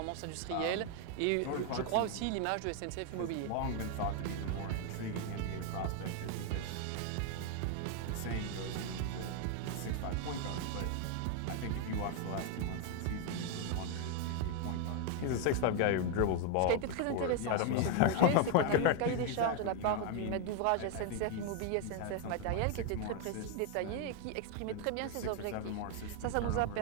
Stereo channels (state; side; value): different; both; correlation 0.01